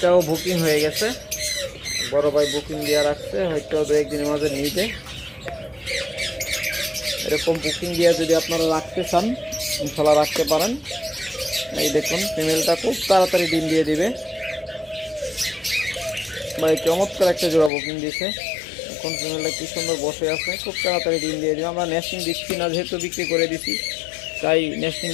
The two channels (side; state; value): right; drops out; at 17.7 s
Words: বুকিং হয়ে গেছে, বড় ভাই বুকিং দিয়ে রাখছে, হয়তো 2-1 দিনের মাঝে নিবে। এরকম বুকিং দিয়ে যদি আপনারা রাখতে চান ইনশাল্লাহ রাখতে পারেন। এই দেখুন ফিমেলটা খুব তাড়াতাড়ি ডিম দিয়ে দিবে। ভাই চমৎকার একটা জোড়া বুকিং দিয়েছে। এখন ফিমেলটা কি সুন্দর বসে আছে, খুব তাড়াতাড়ি ডিম দিয়ে দিবে। আমরা নেস্টিং দিচ্ছি না, যেহেতু বিক্রি করে দিছি তাই নেস্টিং